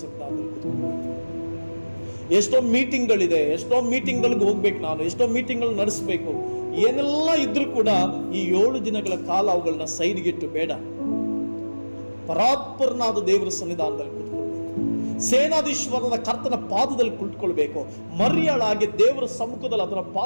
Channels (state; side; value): inverted; both; correlation -1.00